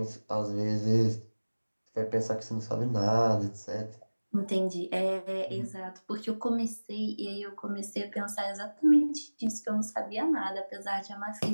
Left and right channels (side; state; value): both; inverted; correlation -1.00